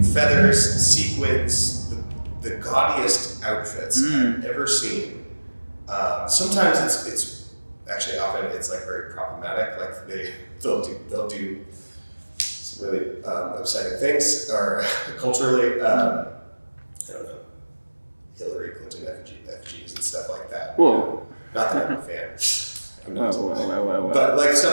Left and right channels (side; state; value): both; inverted; correlation -1.00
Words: feathers, sequins, the gaudiest outfits I've ever seen. Sometimes it's actually often it's like very problematic. Like they'll do some really upsetting things, or culturally, I don't know, Hillary Clinton effigies and stuff like that. Whoa. Not that I'm a fan. I'm not. Whoa. But like